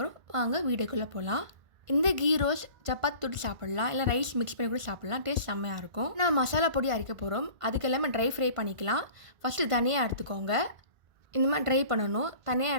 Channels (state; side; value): late; left; 1.5 ms